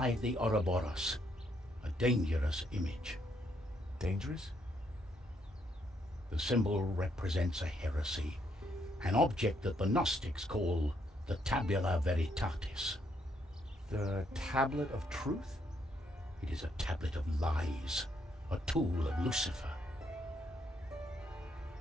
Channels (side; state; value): both; normal; correlation 0.74